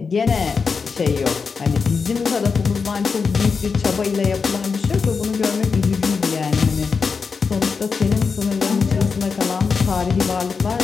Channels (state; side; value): quieter; right; 5.2 dB